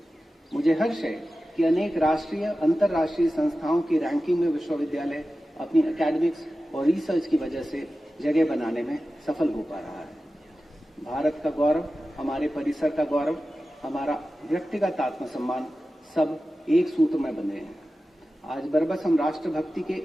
मुझे हर्ष है कि अनेक राष्ट्रीय, अंतर्राष्ट्रीय संस्थाओं की रैंकिंग में विश्वविद्यालय अपनी एकेडमिक्स और रिसर्च की वजह से जगह बनाने में सफल हो पा रहा है। भारत का गौरव, हमारे परिसर का गौरव, हमारा व्यक्तिगत आत्मसम्मान सब एक सूत्र में बंधे हैं। आज बरबस हम राष्ट्रभक्ति के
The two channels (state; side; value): normal; both; correlation 0.94